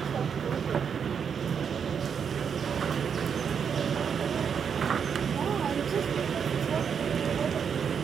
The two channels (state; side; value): quieter; left; 7.1 dB